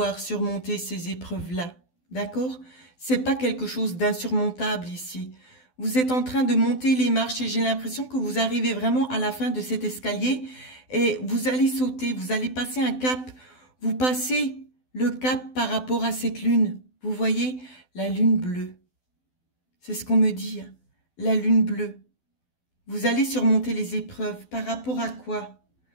surmonter ces épreuves-là. D'accord? C'est pas quelque chose d'insurmontable ici. Vous êtes en train de monter les marches et j'ai l'impression que vous arrivez vraiment à la fin de cet escalier et vous allez sauter, vous allez passer un cap. Vous passez le cap par rapport à cette lune. Vous voyez, la lune bleue. C'est ce qu'on me dit, hein. La lune bleue. Vous allez surmonter les épreuves. Par rapport à quoi?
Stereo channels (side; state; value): right; late; 12 ms